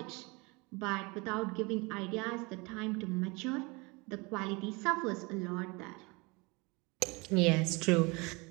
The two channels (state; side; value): quieter; left; 26.8 dB